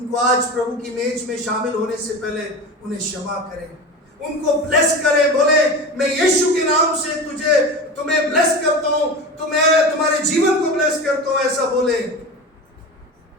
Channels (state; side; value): normal; both; correlation 0.29